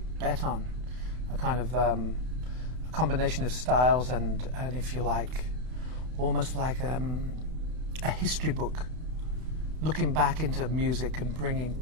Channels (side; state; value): left; late; 32 ms